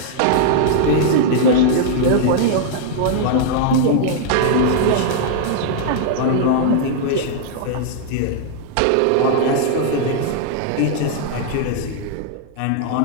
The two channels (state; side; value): different; both; correlation -0.01